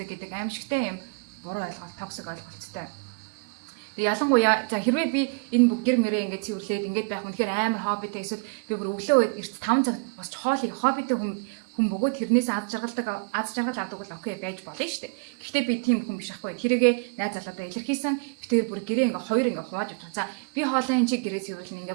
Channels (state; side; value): quieter; left; 36.5 dB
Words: гэдэг аимшигтай юм буруу ойлголт токсик ойлголттой. Ялангуяа за хэрвээ би энэ бүх гэр мөрөө ингээд цэвэрлээд ингээд байх үнэхээр амар хоббитэй эсвэл би бүр өглөө эрт 5 цаг босч хоолыг хоббитэй хүн бөгөөд тэрнээс аз жаргал авдаг бол окей байж болно шүү дээ. Гэхдээ би тийм хүн биш ахгүй. Тэрийгээ найз залуудаа илэрхийлсэн. Би тэгээд бүр гэрээ ингээ хоёр ингээ хувааж авчих. За би хоолой энэ чи гэрээ цэвэрлэн